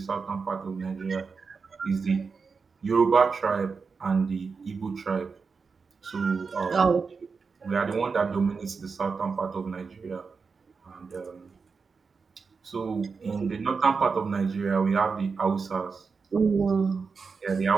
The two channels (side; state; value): left; quieter; 5.0 dB